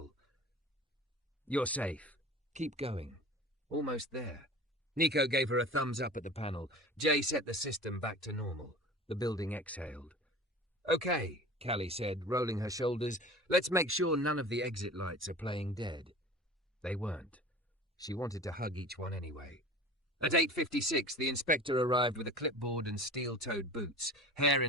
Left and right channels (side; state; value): both; normal; correlation 0.38